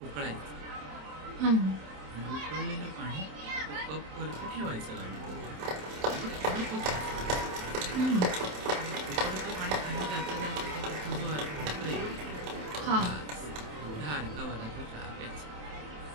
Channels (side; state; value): left; late; 27 ms